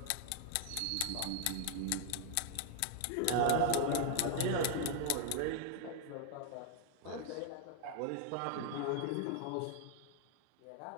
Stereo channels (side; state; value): both; different; correlation 0.00